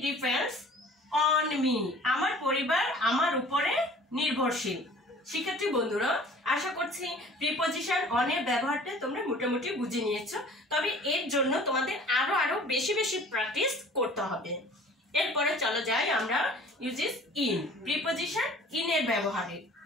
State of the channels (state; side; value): normal; both; correlation 0.48